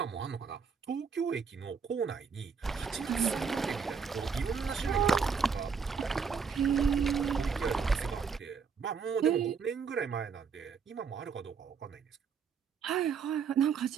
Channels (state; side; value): quieter; left; 6.0 dB